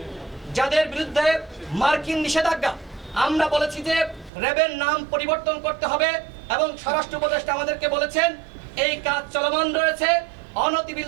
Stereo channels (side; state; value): left; drops out; at 4.3 s